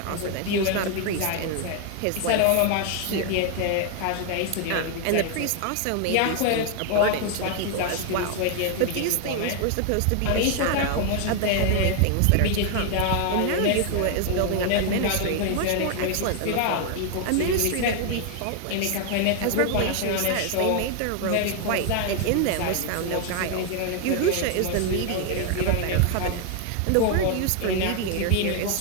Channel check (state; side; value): different; both; correlation 0.00